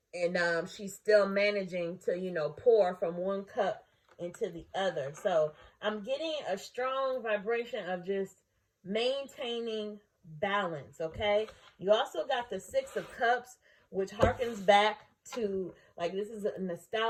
And she's still managing to, you know, pour from one cup into the other. So I'm getting a strong vibration of just maintaining balance, okay? You also got the Six of Cups, which harkens back to, like, this is a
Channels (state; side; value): identical; both; correlation 1.00